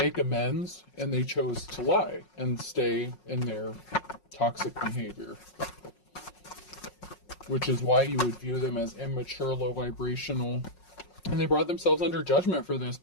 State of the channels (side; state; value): right; late; 5.5 ms